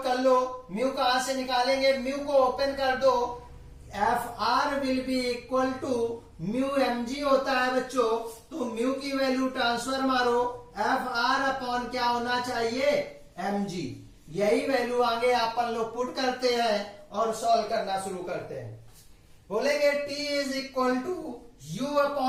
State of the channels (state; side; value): identical; both; correlation 1.00